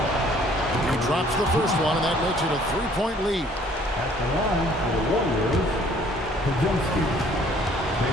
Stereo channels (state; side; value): normal; both; correlation 0.58